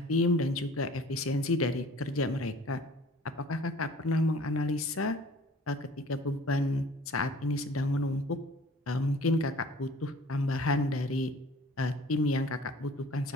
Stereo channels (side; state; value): both; normal; correlation 0.48